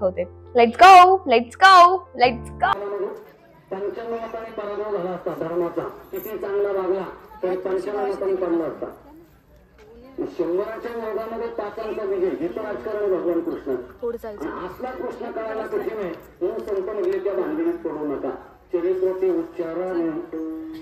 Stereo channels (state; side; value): identical; both; correlation 1.00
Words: Let's go, let's go, let's go. पंचमहापाणी पराभव झाला असता धर्माचा, किती चांगला वागला तर पंचमहापाणी पडला असता. शंभराच्या वर्गामध्ये पाचांचा विजय, हिचं राजकारण भगवान कृष्ण. असला कृष्ण कळायला कठीण आहे म्हणून संत म्हणले त्या भांडणीत पडू नका. चरित्राचे उच्चारण